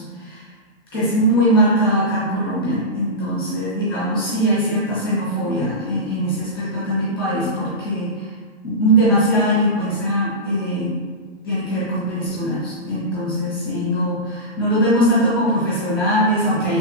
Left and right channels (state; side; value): normal; both; correlation -0.15